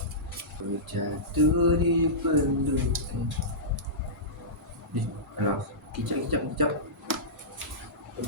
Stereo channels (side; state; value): both; normal; correlation -0.17